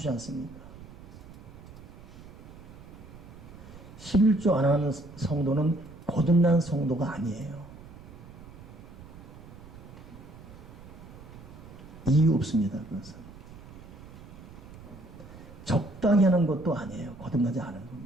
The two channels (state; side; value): noise; right; rumble, 17 dB below the sound